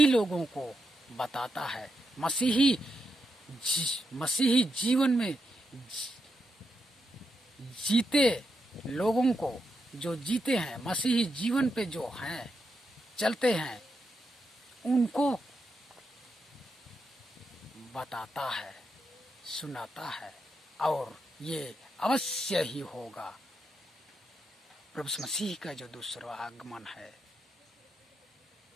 लोगों को बताता है। मसीही मसीही जीवन में जीते लोगों को, जो जीते हैं मसीही जीवन पे, जो हैं चलते हैं, उनको बताता है, सुनाता है, और ये अवश्य ही होगा। प्रभु मसीह का जो दूसरा आगमन है,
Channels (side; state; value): both; normal; correlation 0.84